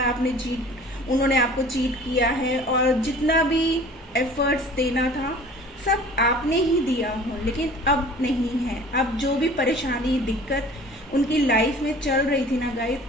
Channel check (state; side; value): normal; both; correlation 0.46